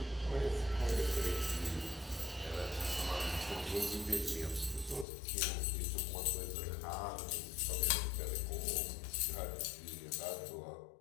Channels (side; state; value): right; drops out; at 5.1 s